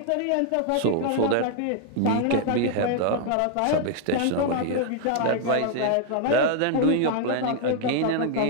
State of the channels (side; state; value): both; different; correlation 0.00